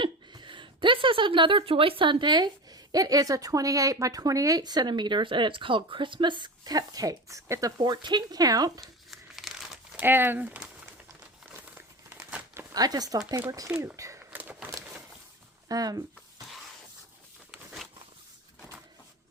This is another Joy Sunday. It is a 28 by 28 centimeters, and it's called Christmas Cupcakes. It's a 14 count, and I just thought they were cute.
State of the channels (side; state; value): both; normal; correlation 0.27